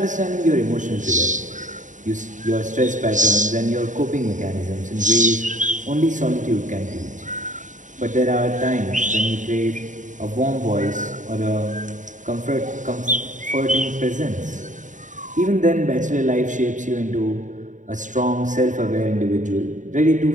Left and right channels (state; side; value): late; left; 0.36 ms